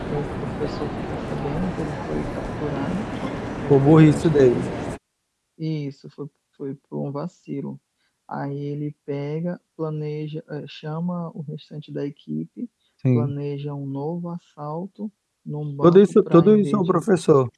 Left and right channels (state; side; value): identical; both; correlation 1.00